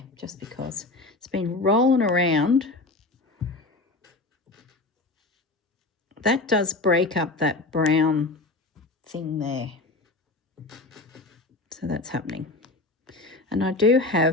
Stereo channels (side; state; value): right; quieter; 3.2 dB